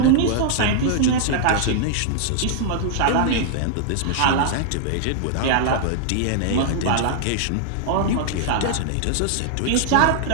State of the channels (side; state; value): both; different; correlation -0.01